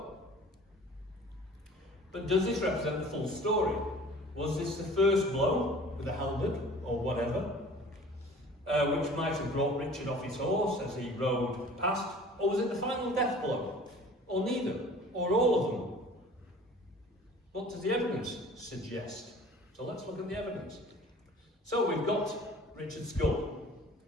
but does this represent the full story? Was this the first blow with a halberd or whatever, which might have brought Richard off his horse as he rode past, or was it the final death blow, or neither, or all of them? What does the evidence suggest? So let's look at the evidence. So we've got Richard's skull,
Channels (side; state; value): both; normal; correlation 0.46